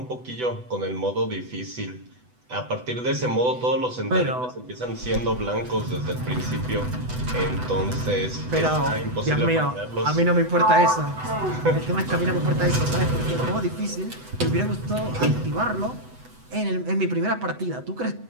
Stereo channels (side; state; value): left; late; 8.0 ms